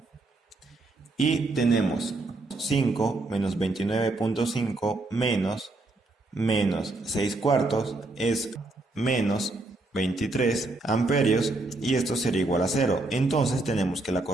y tenemos 5 menos 29,5 menos 6 cuartos es menos 23 amperios, y esto sería igual a 0. Entonces tenemos que la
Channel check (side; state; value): left; quieter; 3.1 dB